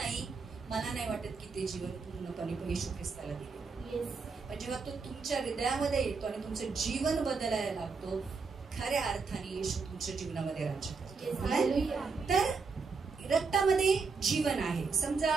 मला नाही वाटत की ते जीवन पूर्णपणे येशू ख्रिस्ताला दिले. पण जेव्हा तो तुमच्या हृदयामध्ये येतो आणि तुमचं जीवन बदलायला लागतो, खऱ्या अर्थाने येशू तुमच्या जीवनामध्ये राज्य करतो. तर रक्तामध्ये जीवन आहे. समजा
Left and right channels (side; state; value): left; quieter; 4.7 dB